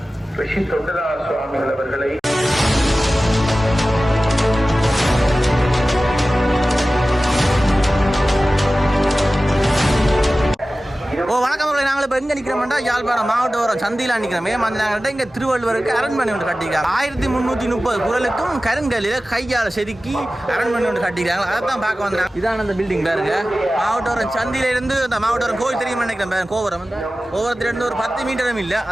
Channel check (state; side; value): normal; both; correlation 0.96